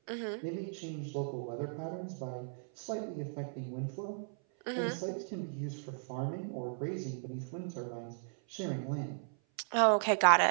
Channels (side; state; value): left; silent; 54 dB below the other